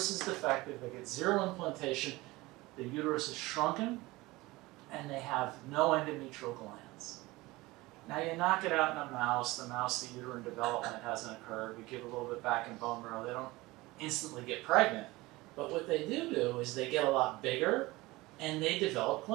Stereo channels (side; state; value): left; quieter; 20.7 dB